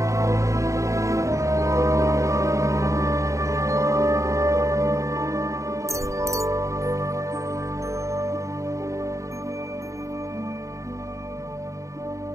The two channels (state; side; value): late; left; 0.15 ms